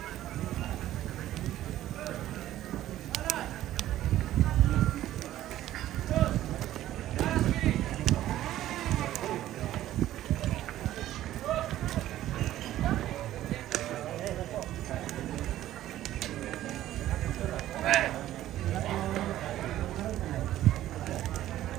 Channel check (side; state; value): left; quieter; 13.6 dB